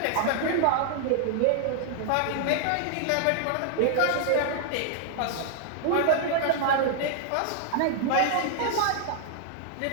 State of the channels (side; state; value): both; different; correlation 0.00